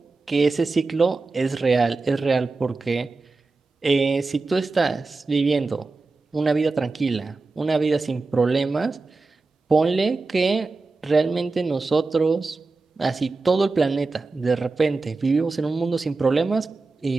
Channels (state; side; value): quieter; left; 3.7 dB